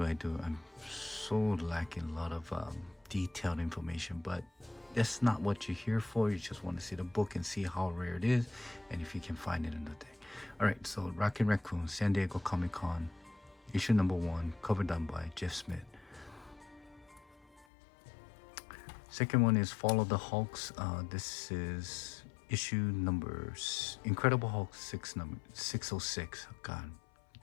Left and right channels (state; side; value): drops out; right; at 17.7 s